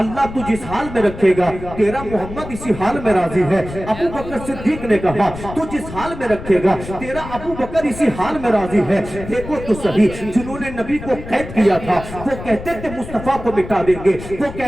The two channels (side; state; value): left; noise; rumble, 11 dB below the sound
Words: तू जिस हाल में रखेगा तेरा मोहम्मद इसी हाल में राजी है। अबू बकर सिद्दीक ने कहा तू जिस हाल में रखेगा तेरा अबू बकर इसी हाल में राजी है। देखो तो सही, जिन्होंने नबी को कैद किया था वो कहते थे मुस्तफा को मिटा देंगे, वो